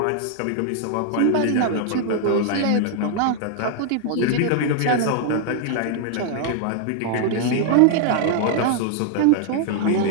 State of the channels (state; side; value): different; both; correlation 0.00